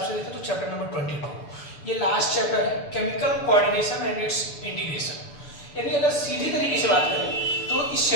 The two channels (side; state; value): right; late; 6.9 ms